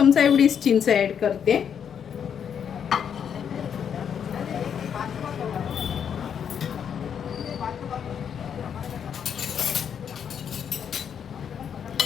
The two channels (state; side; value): quieter; right; 8.0 dB